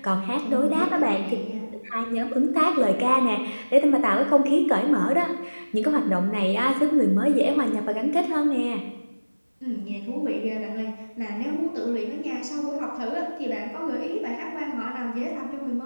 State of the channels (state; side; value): inverted; both; correlation -1.00